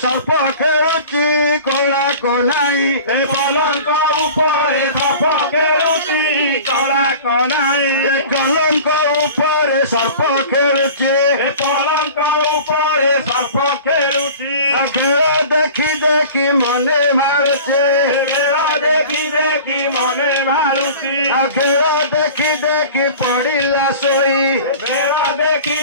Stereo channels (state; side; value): inverted; both; correlation -0.40